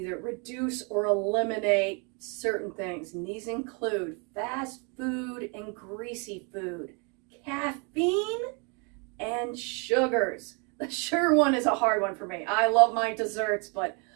reduce or eliminate certain things. And these include fast food and greasy food, caffeine, and sugars. The sugar one is a hard one for me. I love my desserts, but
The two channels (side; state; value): left; quieter; 34.3 dB